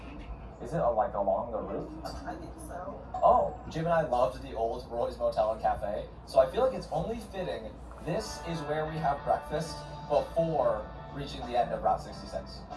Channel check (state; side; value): identical; both; correlation 1.00